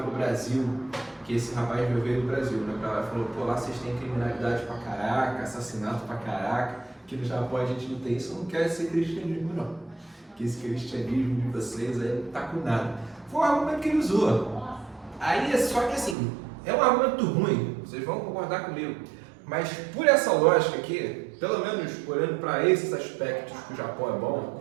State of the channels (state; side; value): drops out; left; at 16.2 s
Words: o Brasil, que esse rapaz veio do Brasil, né, pra lá, falou, pô, lá vocês têm criminalidade pra caraca, assassinato pra caraca, que no Japão a gente não tem isso, eu não quero ser cristianismo não, que esse cristianismo de vocês aí não tá com nada. Foi um argumento que ele usou. Aí, só que assim, é um argumento ruim, vocês vão concordar comigo, mas por essa lógica aqui, pelo menos olhando para esses aspectos que o Japão é bom,